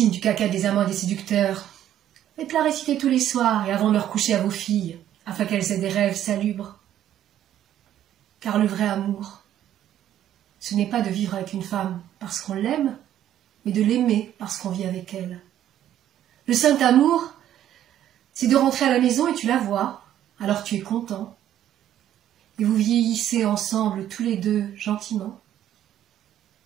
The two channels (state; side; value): quieter; left; 11.4 dB